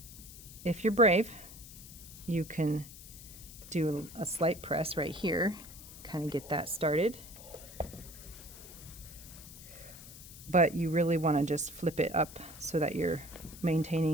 if you're brave, you can do a slight press right here, kind of get that started. But you really want to just flip it up so that you're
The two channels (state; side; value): noise; left; hiss, 16 dB below the sound